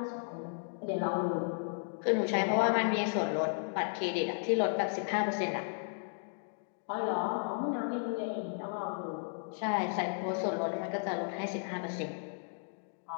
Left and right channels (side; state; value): right; silent; digital silence